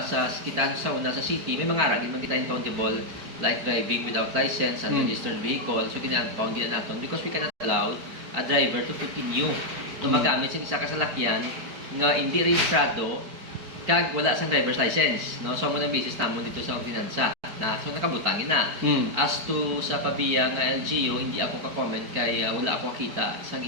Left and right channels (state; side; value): late; left; 4.5 ms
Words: city may mga ara din man kita countable like driving without license and registered vehicle. So gina-impound din natin because we cannot allow a driver to continue na magamit sa isa ka salakyan nga hindi rehistrado kag wala sang driver's license, no? So mo na basis namon dito sa ordinansa na so nakabutangin na. As to sa Pabiya nga LGU, hindi ako ka-comment kay wala ako kita sa